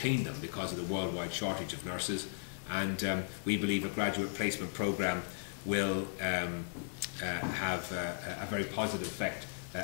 them because of the worldwide shortage of nurses. And we believe a graduate placement programme will have a very positive effect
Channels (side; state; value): right; silent; digital silence